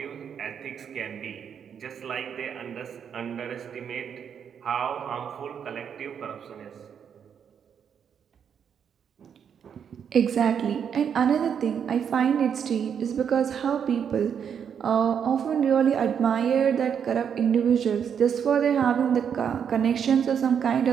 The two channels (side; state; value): left; quieter; 7.7 dB